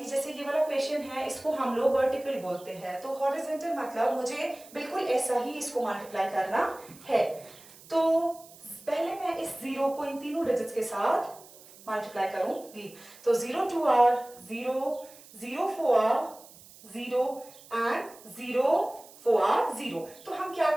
जैसे ये वाला क्वेश्चन है, इसको हम लोग वर्टिकल बोलते हैं, तो हॉरिजेंटल मतलब मुझे बिल्कुल ऐसा ही इसको मल्टीप्लाई करना है। तो पहले मैं इस 0 को इन तीनों डिजिट्स के साथ मल्टीप्लाई करूंगी, तो 0 2 r 0, 0 4 r 0 एंड 0 4 r 0। तो हम क्या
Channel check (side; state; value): right; noise; hiss, 21 dB below the sound